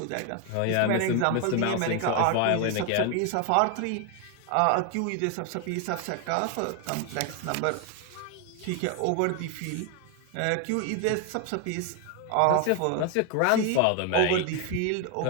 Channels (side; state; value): both; different; correlation 0.01